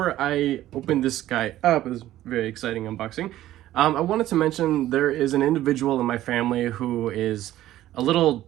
I open this guy up, it's a very exciting unboxing, I wanted to mention there is an individual in my family who is a little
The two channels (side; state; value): left; quieter; 14.0 dB